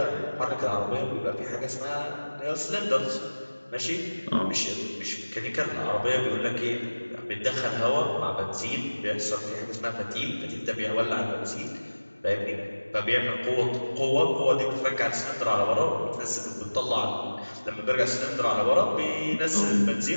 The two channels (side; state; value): both; inverted; correlation -1.00